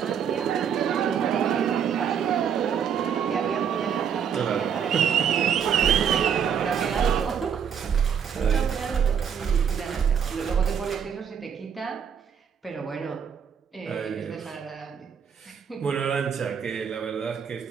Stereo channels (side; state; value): left; quieter; 7.7 dB